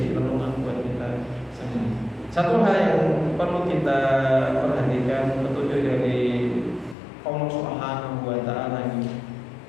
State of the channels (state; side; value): drops out; right; at 7.0 s